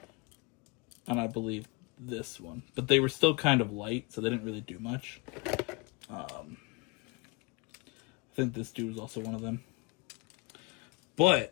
And I believe this one. But they were still kind of light, so they didn't really do much. I think this dude was also one of them.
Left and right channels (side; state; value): right; quieter; 27.1 dB